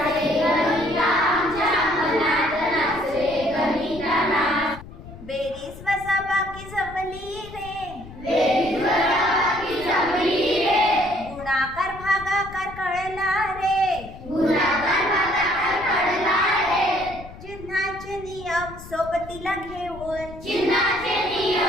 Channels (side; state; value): left; noise; rumble, 15 dB below the sound